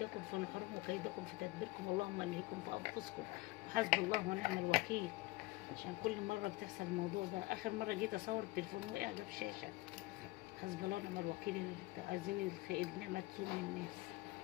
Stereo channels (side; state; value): right; quieter; 20.7 dB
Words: في نحوركم وكيدكم في تدبيركم، اللهم الهيكم في انفسكم وحسبي الله ونعم الوكيل. عشان كل مره بتحصل الموضوع ده. اخر مره جيت اصور التليفون وقع جاب شاشه. حسبي الله ونعم الوكيل. اللي عايزين النعمه تزول من الناس،